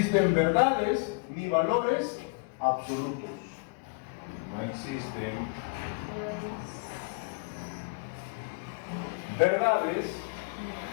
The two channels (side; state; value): right; quieter; 32.3 dB